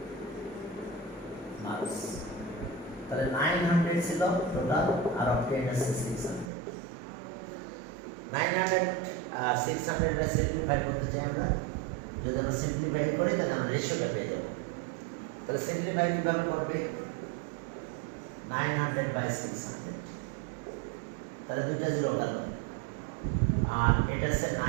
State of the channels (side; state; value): left; drops out; at 6.5 s